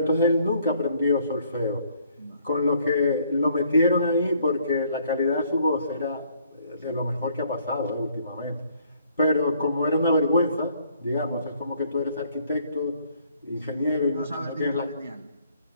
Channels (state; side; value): inverted; both; correlation -0.64